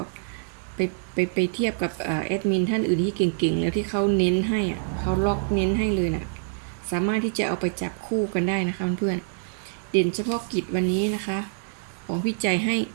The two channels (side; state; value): left; silent; 61 dB below the other